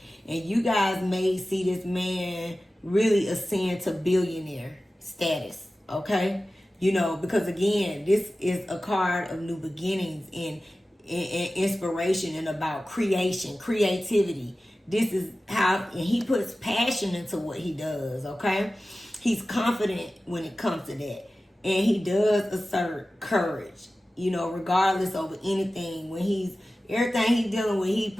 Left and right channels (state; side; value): normal; both; correlation 0.96